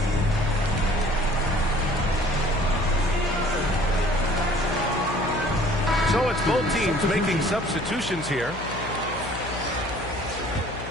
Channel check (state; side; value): noise; left; hum, 11 dB below the sound